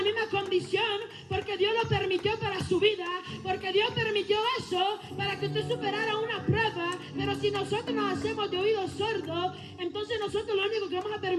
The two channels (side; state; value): both; identical; correlation 1.00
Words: misma condición, porque Dios lo permitió para su vida, porque Dios permitió eso para que usted superara una prueba. Pero si nosotros nos hacemos de oídos sordos, entonces nosotros lo único que vamos a